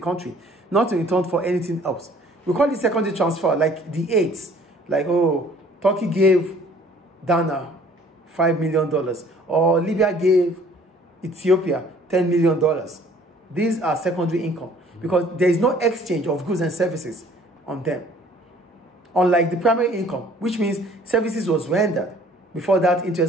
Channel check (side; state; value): both; normal; correlation 0.55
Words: not in return for anything else. We call it secondary transfer, like the aids. Like, oh, Turkey gave Ghana $5 million, or Libya gave Ethiopia $10 million. These are secondary income because there is no exchange of goods and services on them. Unlike the primary income, which means services was rendered before that